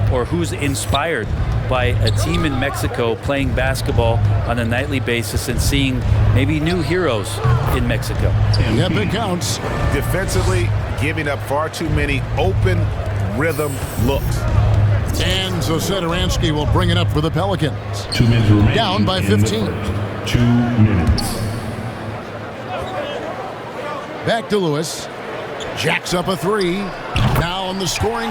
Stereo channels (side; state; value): both; identical; correlation 1.00